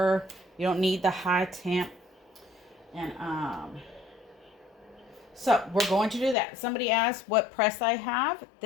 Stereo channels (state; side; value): drops out; right; at 6.4 s